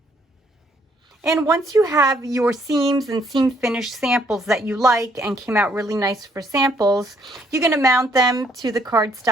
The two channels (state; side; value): normal; both; correlation 0.67